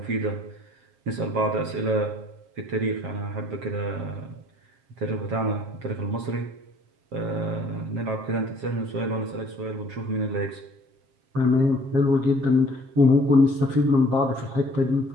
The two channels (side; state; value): left; late; 7.5 ms